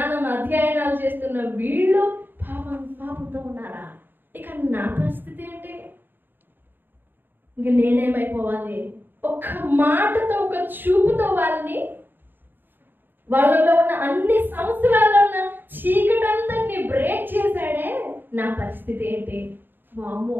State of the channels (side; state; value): left; late; 0.094 ms